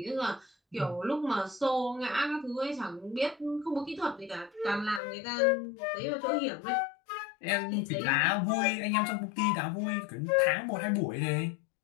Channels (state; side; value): drops out; right; at 5.0 s